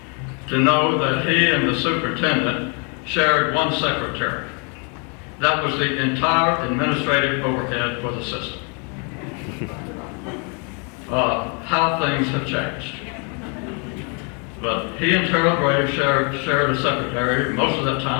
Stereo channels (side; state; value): right; quieter; 36.4 dB